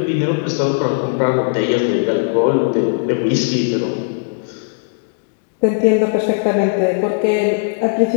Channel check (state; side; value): silent; right; digital silence